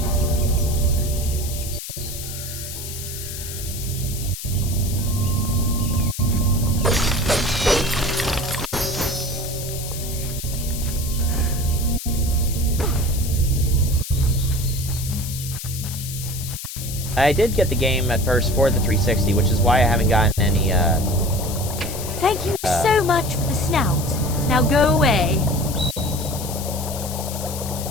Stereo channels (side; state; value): left; noise; hiss, 9 dB below the sound